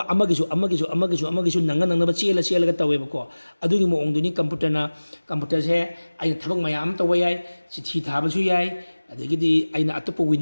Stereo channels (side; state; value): both; inverted; correlation -1.00